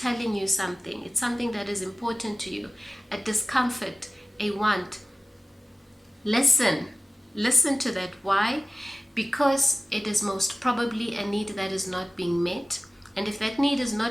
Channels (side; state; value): both; normal; correlation 0.96